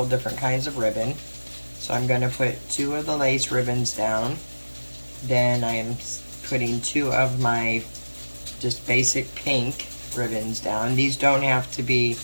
different kinds of ribbon. So I'm going to put 2 of the lace ribbons down. Then I am putting 2 of my just basic pink ribbons down. These don't have to be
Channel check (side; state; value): both; inverted; correlation -1.00